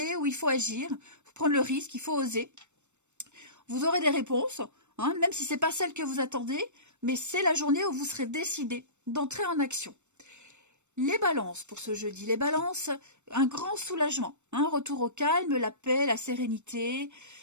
où il faut agir, il faut prendre le risque, il faut oser. Vous aurez des réponses, hein, même si ce n'est pas celle que vous attendez, mais c'est la journée où vous serez décidé d'entrer en action. Les balances pour ce jeudi. Les balances, un grand soulagement. Un retour au calme, la paix, la sérénité.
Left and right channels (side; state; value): left; late; 0.84 ms